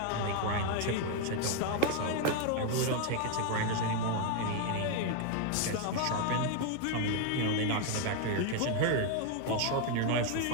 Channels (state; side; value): different; both; correlation 0.01